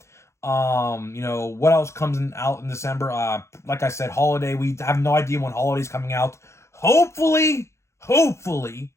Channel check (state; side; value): late; right; 0.13 ms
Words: What else comes out in December? Like I said, Holiday. We have no idea when Holiday's coming out. Hopefully,